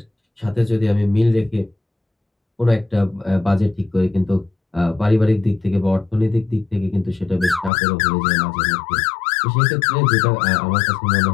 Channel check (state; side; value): drops out; right; at 7.7 s